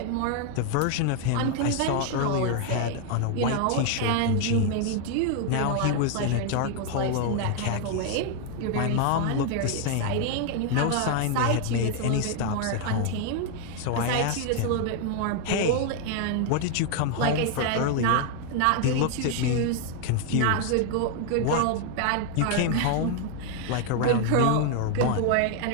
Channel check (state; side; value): different; both; correlation 0.00